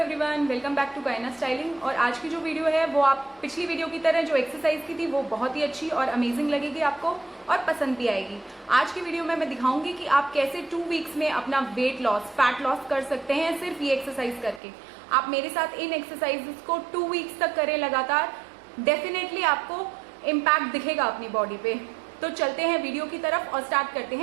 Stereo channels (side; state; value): left; drops out; at 14.6 s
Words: Everyone, welcome back to गायना स्टाइलिंग। और आज की जो वीडियो है वो आप पिछली वीडियो की तरह जो एक्सरसाइज की थी वो बहुत ही अच्छी और अमेजिंग लगेगी आपको और पसंद भी आएगी। आज की वीडियो में मैं दिखाऊंगी कि आप कैसे 2 वीक्स में अपना वेट लॉस, फैट लॉस कर सकते हैं सिर्फ ये एक्सरसाइज करके। आप मेरे साथ इन एक्सरसाइजेस को 2 वीक्स तक करें लगातार, डेफिनेटली आपको इम्पैक्ट दिखेगा अपनी बॉडी पे। तो चलते हैं वीडियो की तरफ और स्टार्ट करते